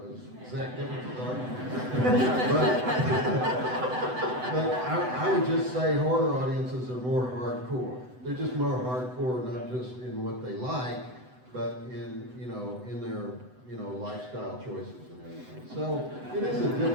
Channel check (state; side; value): late; left; 7.9 ms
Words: exact differences are. But I would just say horror audiences are more hardcore. They're just more hardcore, not just in what they like, but in their lifestyle choices and everything. So it is a